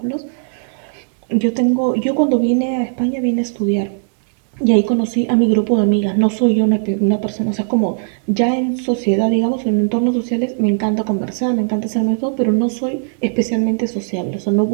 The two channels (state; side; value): silent; left; 66 dB below the other